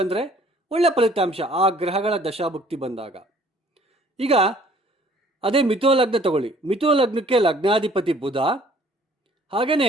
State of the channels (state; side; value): normal; both; correlation 0.57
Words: ಅಂದರೆ ಒಳ್ಳೆಯ ಫಲಿತಾಂಶ ಆ ಗ್ರಹಗಳ ದಶಾಭುಕ್ತಿ ಬಂದಾಗ. ಈಗ ಅದೇ ಮಿಥುನ ಲಗ್ನ ತಗೊಳ್ಳಿ. ಮಿಥುನ ಲಗ್ನಕ್ಕೆ ಲಗ್ನಾಧಿಪತಿ ಬುಧ,